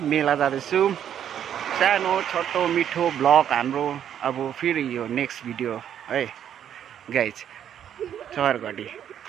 मेला जाँदैछौँ। सानो छोटो मिठो ब्लग हाम्रो अब फेरि यो नेक्स्ट भिडियो है गाइस। चौरघडी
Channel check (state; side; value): quieter; left; 9.6 dB